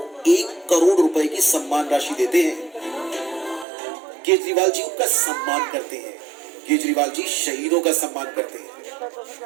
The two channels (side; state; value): left; drops out; at 3.7 s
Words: 1 करोड़ रुपए की सम्मान राशि देते हैं। केजरीवाल जी उनका सम्मान करते हैं। केजरीवाल जी शहीदों का सम्मान करते हैं।